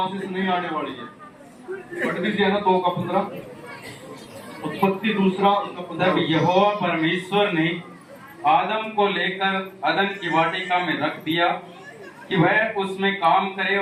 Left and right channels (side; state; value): both; identical; correlation 1.00